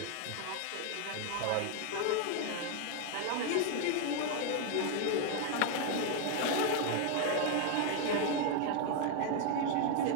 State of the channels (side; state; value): both; different; correlation 0.01